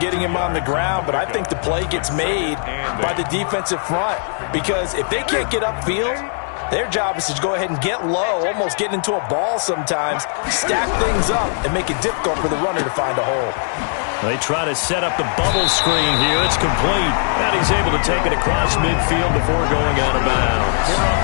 him on the ground, but I think the play gets made by the defensive front because if they can't get upfield, their job is to go ahead and get low, almost get into a ball sometimes, stack things up, and make it difficult for the runner to find a hole. They try to set up the bubble screen here. It's complete. And he's able to take it across midfield before going out of bounds.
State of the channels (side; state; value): right; silent; 66 dB below the other